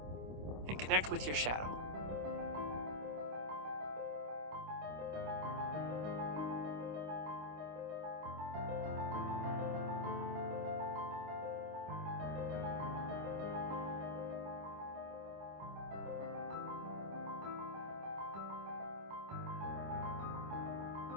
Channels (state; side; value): late; left; 26 ms